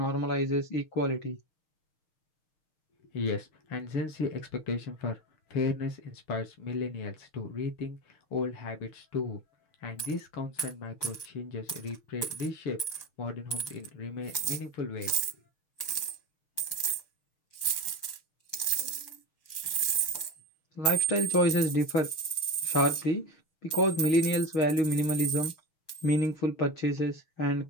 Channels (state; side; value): late; right; 6.4 ms